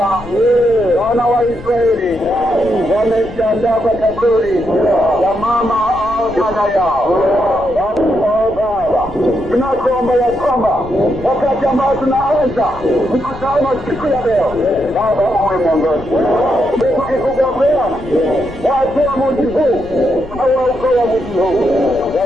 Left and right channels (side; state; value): left; noise; rumble, 17 dB below the sound